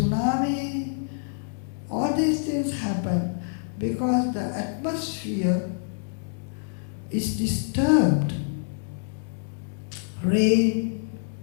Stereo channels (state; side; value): silent; right; digital silence